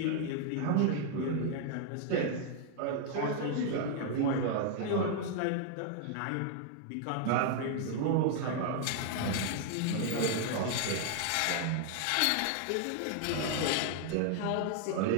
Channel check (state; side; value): different; both; correlation 0.00